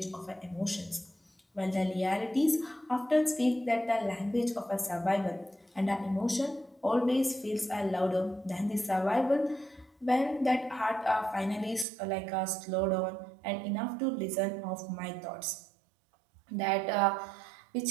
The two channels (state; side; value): drops out; left; at 11.9 s